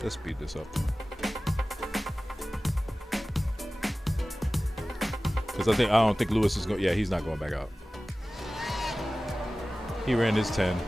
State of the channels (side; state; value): both; normal; correlation 0.97